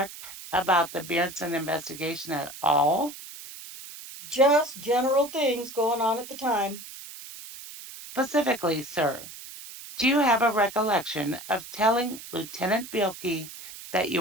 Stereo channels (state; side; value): noise; right; hiss, 14 dB below the sound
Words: about the Bjornson investigation at all? Just general things going on at the time. Specifically, sir, do you have a recollection of telling Lieutenant Bielke that